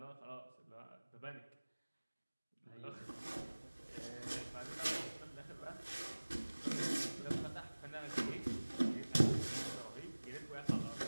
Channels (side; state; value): both; inverted; correlation -1.00